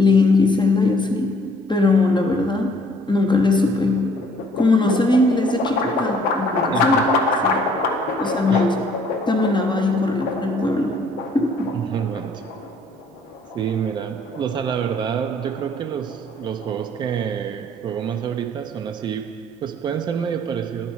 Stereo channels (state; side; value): normal; both; correlation 0.60